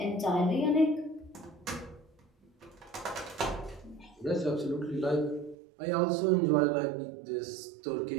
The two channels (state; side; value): drops out; left; at 5.6 s